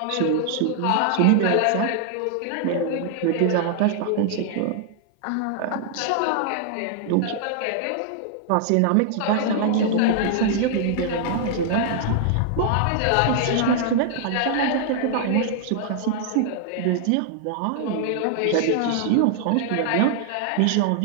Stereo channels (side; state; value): both; different; correlation 0.00